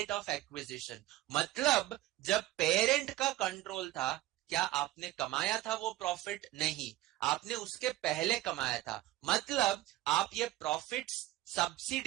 of acquisition. मतलब जब पेरेंट का कंट्रोल था, क्या आपने कमाया था वो प्रॉफिट? नहीं, आपने उसके पहले कमाया था. मतलब आप ये प्रॉफिट्स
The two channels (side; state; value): left; quieter; 15.9 dB